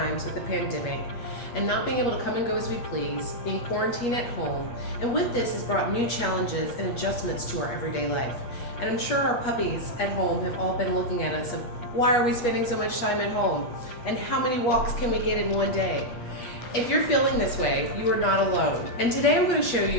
with the pandemic and not being able to come and go as we please, being quarantined at home, and with this has brought new challenges and adjustments to our everyday life. And I'm sure our puppies at home have all been looking at us of why are we spending so much time at home? And how many walks can we get in one day? If you're feeling this way, you are not alone. And today I'm going to show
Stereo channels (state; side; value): late; right; 8.4 ms